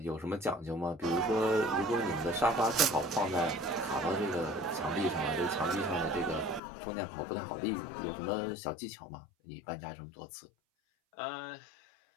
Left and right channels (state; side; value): drops out; right; at 6.6 s